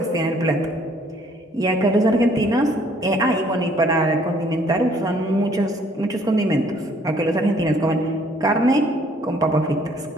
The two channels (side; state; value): both; normal; correlation 0.62